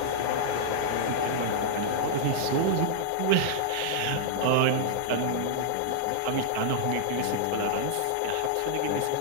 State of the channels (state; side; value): different; both; correlation -0.02